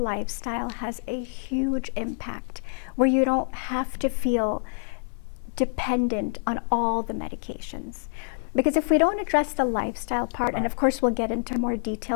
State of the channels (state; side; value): silent; right; 60 dB below the other